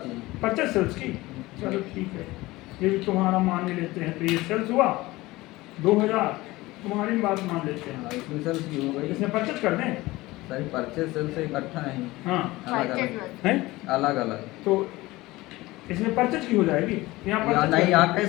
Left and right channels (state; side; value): quieter; right; 19.6 dB